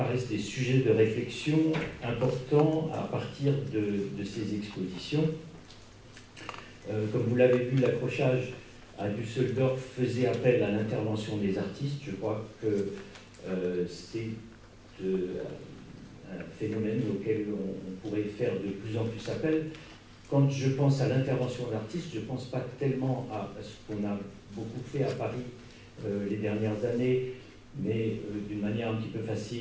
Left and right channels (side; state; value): both; identical; correlation 1.00